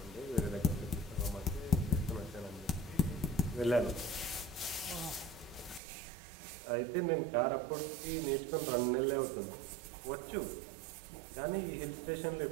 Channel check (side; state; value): left; drops out; at 5.8 s